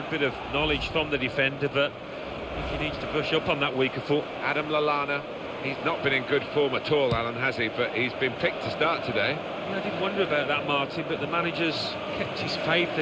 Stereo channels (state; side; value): identical; both; correlation 1.00